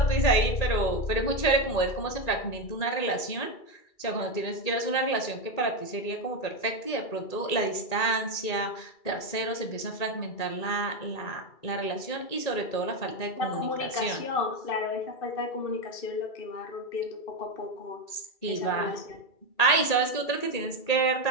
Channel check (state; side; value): late; right; 2.3 ms